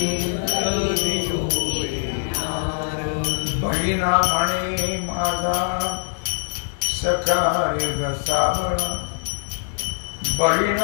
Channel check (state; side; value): silent; right; 64 dB below the other